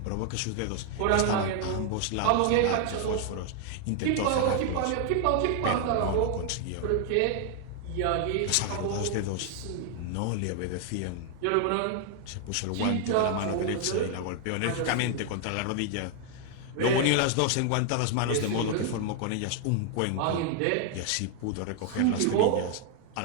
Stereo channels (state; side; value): different; both; correlation 0.00